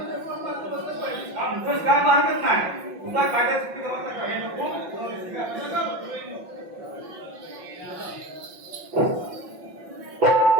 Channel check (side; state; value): left; late; 5.8 ms